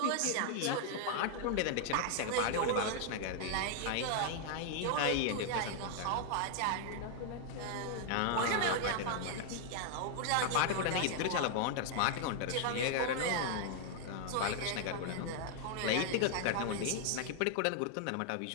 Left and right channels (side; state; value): both; different; correlation 0.00